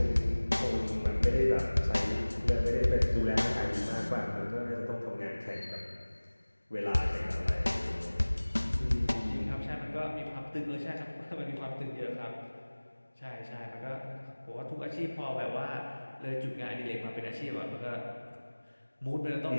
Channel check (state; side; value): inverted; both; correlation -1.00